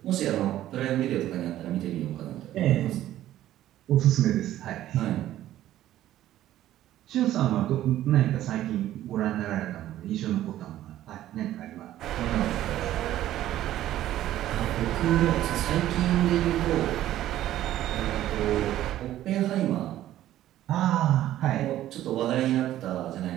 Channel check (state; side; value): quieter; left; 13.3 dB